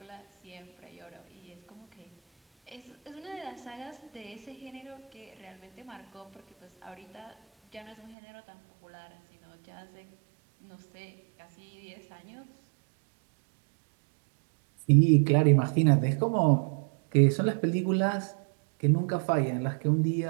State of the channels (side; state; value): left; drops out; at 8.2 s